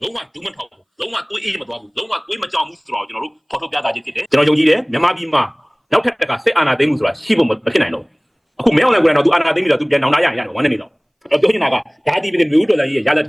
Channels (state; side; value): identical; both; correlation 1.00